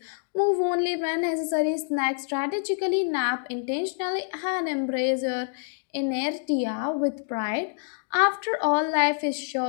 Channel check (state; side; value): silent; right; digital silence